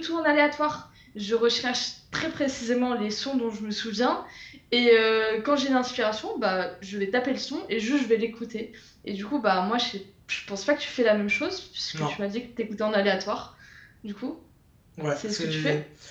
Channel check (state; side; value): identical; both; correlation 1.00